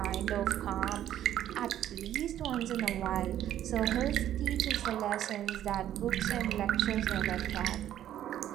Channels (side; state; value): left; quieter; 11.6 dB